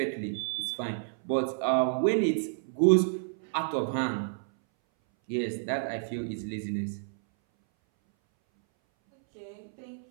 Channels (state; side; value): silent; left; 58 dB below the other